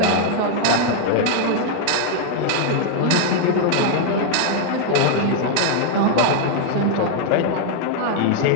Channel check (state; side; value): different; both; correlation 0.00